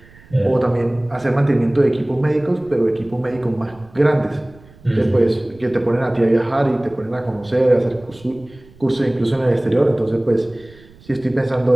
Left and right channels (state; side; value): noise; right; rumble, 25 dB below the sound